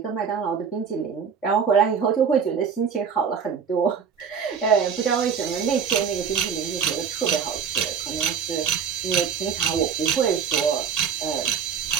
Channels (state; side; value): quieter; left; 6.8 dB